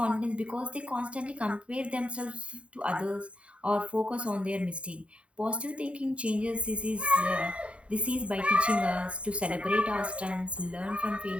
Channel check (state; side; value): late; left; 0.061 ms